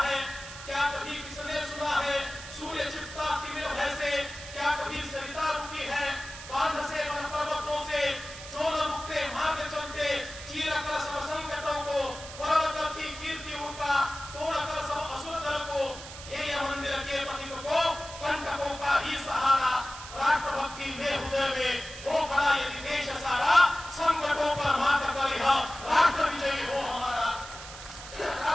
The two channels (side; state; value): right; noise; hiss, 13 dB below the sound